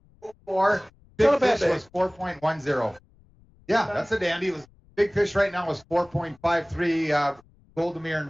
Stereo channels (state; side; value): noise; left; rumble, 30 dB below the sound